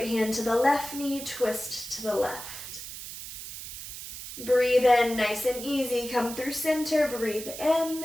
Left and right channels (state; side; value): noise; right; hiss, 10 dB below the sound